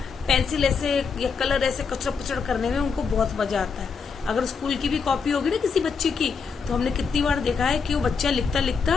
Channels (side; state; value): right; quieter; 5.5 dB